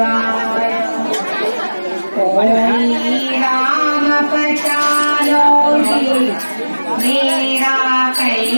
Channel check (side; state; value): both; inverted; correlation -1.00